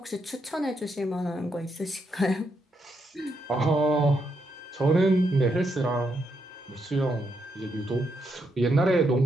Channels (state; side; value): normal; both; correlation 0.79